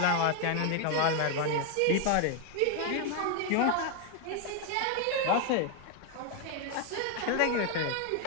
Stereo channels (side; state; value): both; different; correlation 0.01